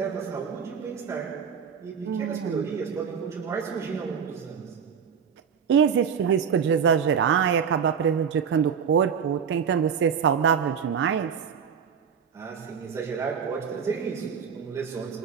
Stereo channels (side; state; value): left; quieter; 7.1 dB